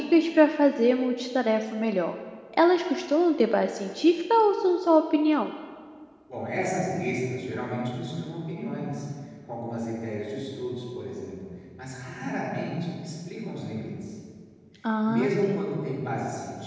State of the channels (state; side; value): identical; both; correlation 1.00